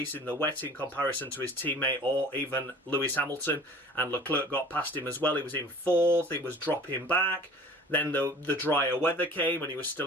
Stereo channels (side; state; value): both; normal; correlation 0.46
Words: in the wet in comparison to his teammate or even Lewis Hamilton, and Leclerc got past him as well. He was in 4th, he was dropping back. Then the drier weather came and he was